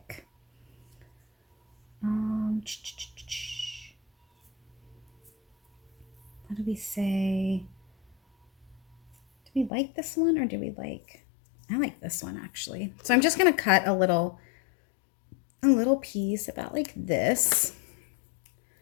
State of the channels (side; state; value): right; drops out; at 9.7 s